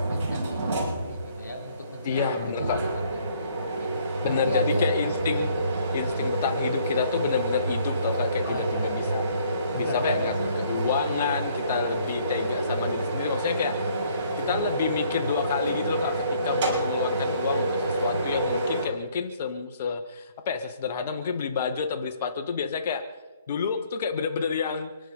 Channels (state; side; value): inverted; both; correlation -0.62